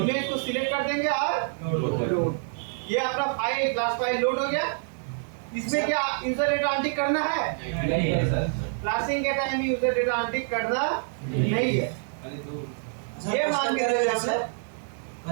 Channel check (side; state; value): left; silent; digital silence